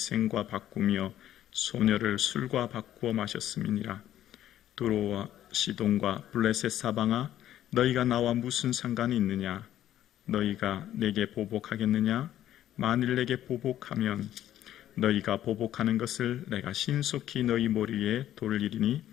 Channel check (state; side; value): quieter; right; 12.2 dB